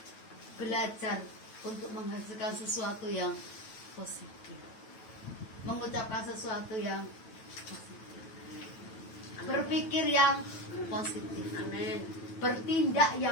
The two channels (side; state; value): right; late; 9.2 ms